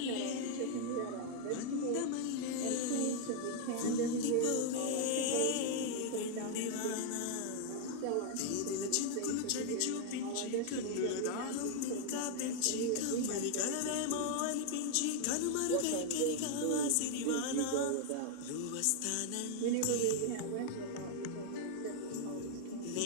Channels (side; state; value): both; different; correlation 0.00